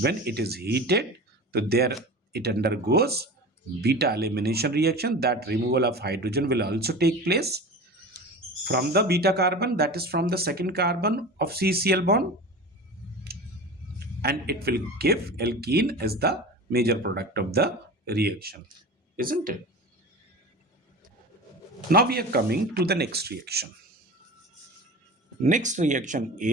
when it is heated. So there it undergoes beta elimination reaction. That removal of hydrogen will also take place from the beta carbon, that is from the second carbon of CCl bond, and it will give alkene as the major product of the reaction, isn't it? Now we are coming to the next reaction. Next reaction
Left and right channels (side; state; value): both; normal; correlation 0.33